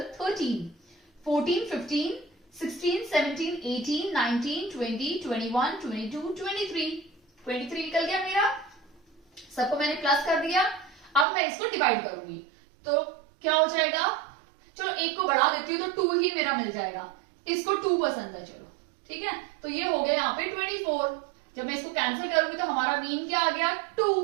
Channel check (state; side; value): drops out; left; at 11.2 s